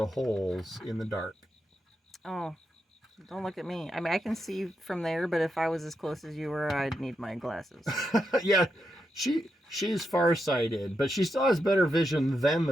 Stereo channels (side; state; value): both; normal; correlation 0.85